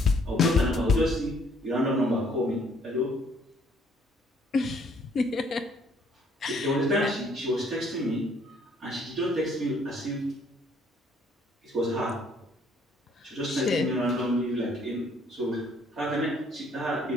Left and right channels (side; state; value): both; normal; correlation 0.63